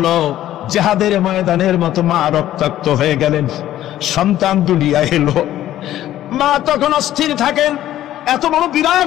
জিহাদের ময়দানের মতো মা রক্তাক্ত হয়ে গেলেন, সন্তান দুনিয়ায় এলো। মা তখন অস্থির থাকেন, এত বড়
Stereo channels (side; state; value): right; quieter; 13.0 dB